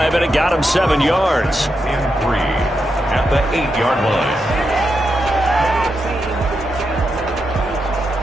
and it got him 7 yards. And 3 at the 8-yard line.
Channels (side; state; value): both; normal; correlation 0.85